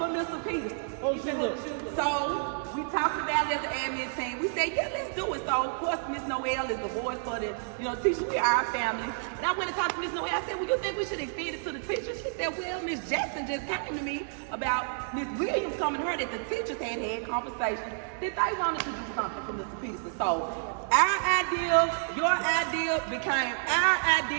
Mr. Peterson. So we talked about it as an admin team. We said, yeah, let's do it. So of course Miss Noel is the voice for the teachers. We are our family. And I went and talked to Miss Noel. I said, well, you think we should extend it to the teachers? She said, well, Miss Jackson just came to me about Miss Williams coming to her that the teachers had conversations that they wanted to do something for Mr. Peterson. So our idea, your idea became our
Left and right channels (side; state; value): left; silent; 58 dB below the other